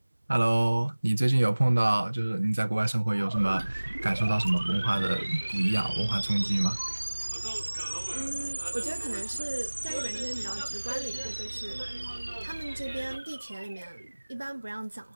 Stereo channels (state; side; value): inverted; both; correlation -1.00